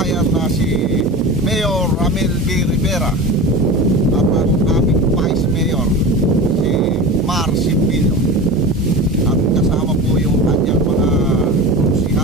na si Mayor Ramil B. Rivera, at ang aming Vice Mayor si Mar Simbilio, at kasama po yung kanyang mga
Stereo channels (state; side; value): normal; both; correlation 0.30